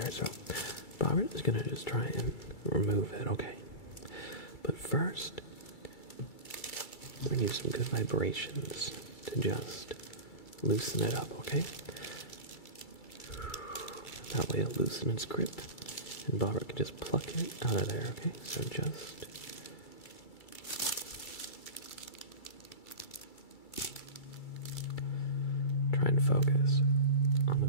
so Bobbert is gonna just try and remove it, okay? But first, we're gonna use some good vibrations to just loosen it up, okay? That way it'll loosen its grip, and Bobbert can just pluck it out of there, okay? So just try and focus on the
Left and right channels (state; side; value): late; right; 2.3 ms